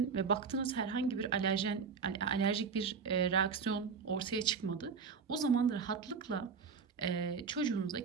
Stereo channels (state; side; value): quieter; left; 5.7 dB